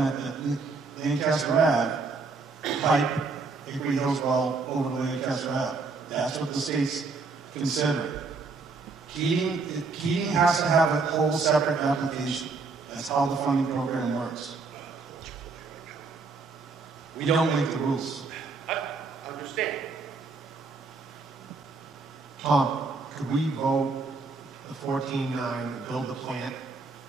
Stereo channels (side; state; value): left; quieter; 4.2 dB